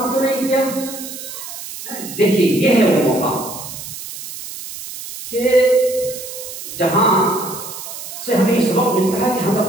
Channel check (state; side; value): noise; right; hiss, 11 dB below the sound